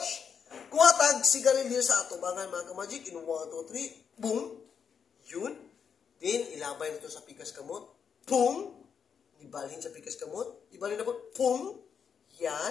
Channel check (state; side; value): quieter; right; 6.9 dB